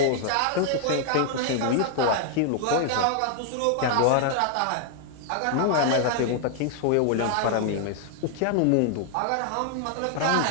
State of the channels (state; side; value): different; both; correlation 0.00